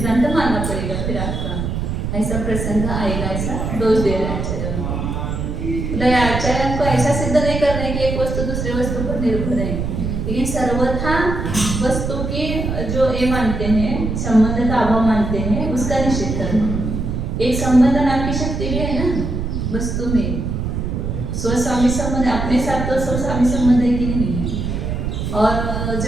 मानना पड़ेगा। फिर आपका ऐसा प्रसंग आएगा, ऐसा दोष दे रहे आचार्य। मतलब आचार्य को ऐसा सिद्ध नहीं करना है कि एक वस्तु दूसरे वस्तु पर निर्भर है, लेकिन सर्वथा वस्तु की जो ये मानते हैं संबंध का अभाव मानते हैं, उसका निषेध करना। एक संबंध नाम की शक्ति भी है ना वस्तु में, स्वस्वामी संबंध, अपने साथ तो स्वस्वामी संबंध है कि नहीं है। और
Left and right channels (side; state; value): right; noise; rumble, 3 dB below the sound